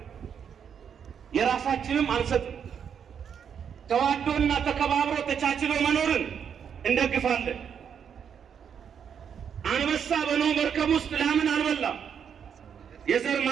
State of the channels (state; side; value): quieter; left; 7.7 dB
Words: የራሳችንም አንሰጥም። ተዋዶና ተከባብሮ ተቻችሎ መኖርን እንደግፋለን። አንበሳ በኖህ መርከብ ውስጥ ላምን አልበላም የዘር